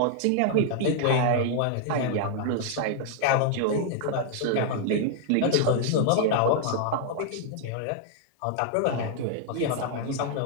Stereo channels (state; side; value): different; both; correlation -0.01